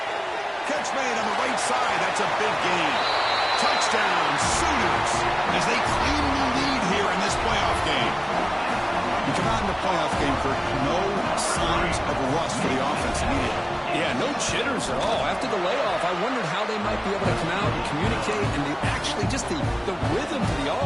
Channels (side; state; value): both; identical; correlation 1.00